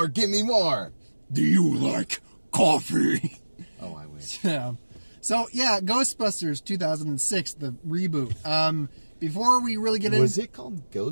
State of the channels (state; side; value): inverted; both; correlation -1.00